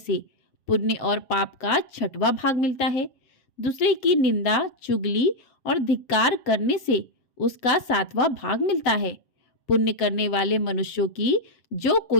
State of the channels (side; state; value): right; late; 7.5 ms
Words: पुण्य और पाप का 6वां भाग मिलता है। दूसरे की निंदा, चुगली और धिक्कार करने से उसका 7वां भाग मिलता है। पुण्य करने वाले मनुष्यों की जो